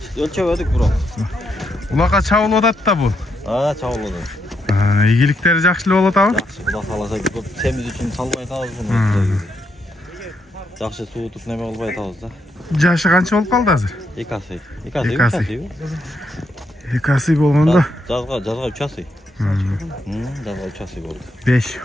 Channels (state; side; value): normal; both; correlation 0.79